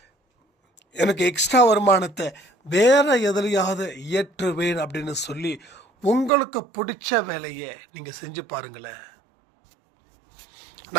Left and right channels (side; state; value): left; drops out; at 6.3 s